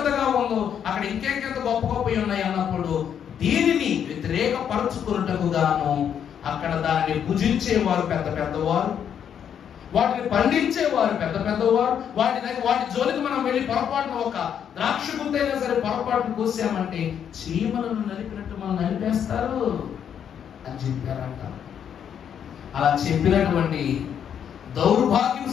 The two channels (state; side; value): quieter; right; 8.6 dB